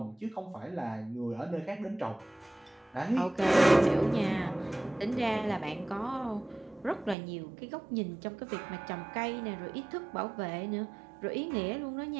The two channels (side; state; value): left; drops out; at 7.2 s